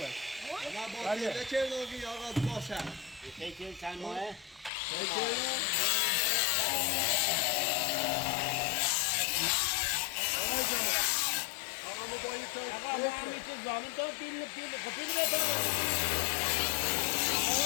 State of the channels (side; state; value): right; drops out; at 4.7 s